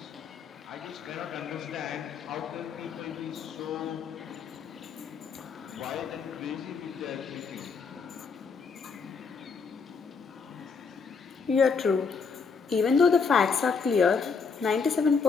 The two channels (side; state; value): right; quieter; 5.3 dB